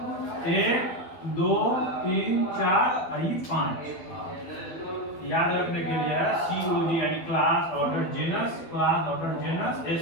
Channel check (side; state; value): right; late; 12 ms